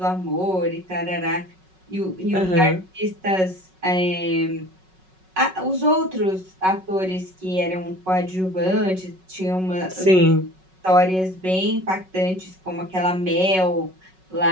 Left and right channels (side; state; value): left; late; 5.4 ms